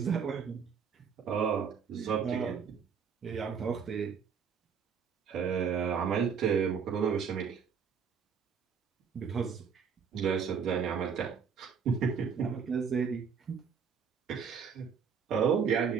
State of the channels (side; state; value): left; quieter; 6.6 dB